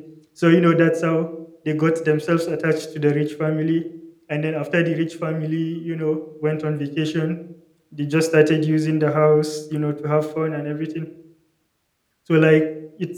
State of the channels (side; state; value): both; identical; correlation 1.00